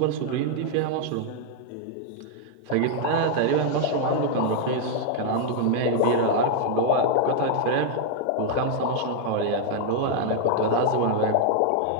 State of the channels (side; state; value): both; different; correlation 0.00